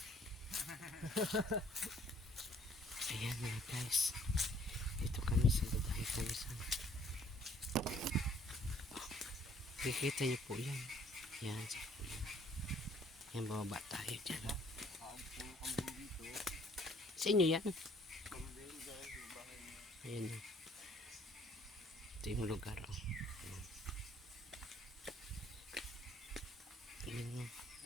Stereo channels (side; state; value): both; normal; correlation 0.60